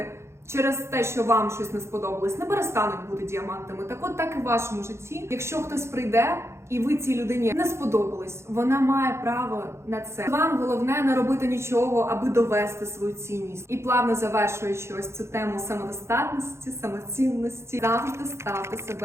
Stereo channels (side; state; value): left; late; 0.13 ms